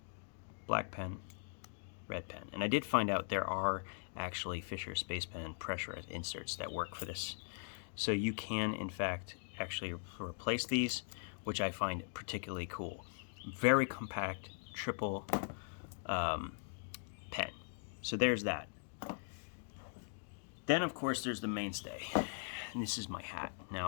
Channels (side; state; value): right; silent; digital silence